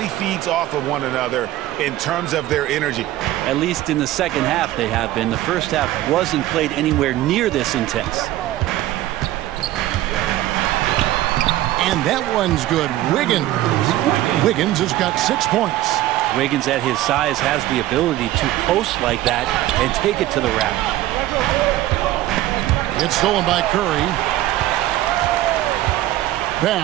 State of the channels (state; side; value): quieter; left; 15.0 dB